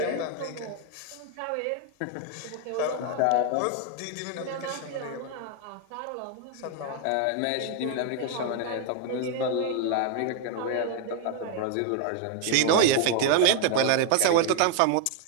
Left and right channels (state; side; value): different; both; correlation 0.00